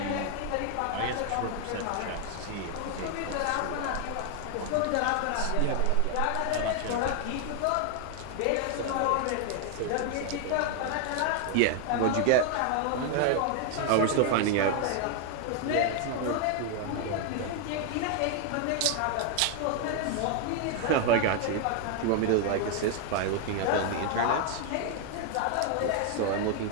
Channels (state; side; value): different; both; correlation 0.00